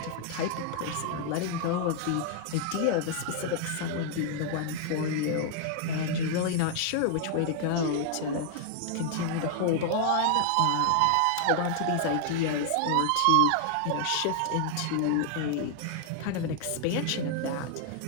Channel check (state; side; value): different; both; correlation 0.00